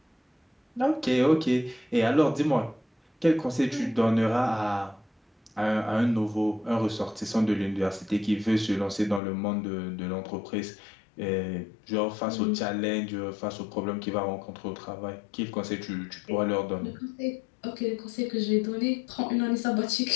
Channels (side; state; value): right; drops out; at 9.2 s